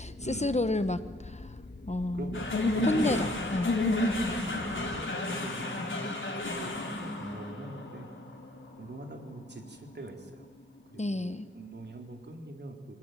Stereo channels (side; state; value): both; normal; correlation 0.60